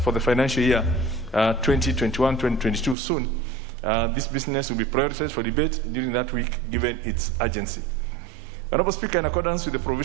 the financial year 2021-2022 soon. This business will be prioritized for debate during that week, given its urgency. Honorable Speaker, in accordance with the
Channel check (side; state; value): left; drops out; at 3.0 s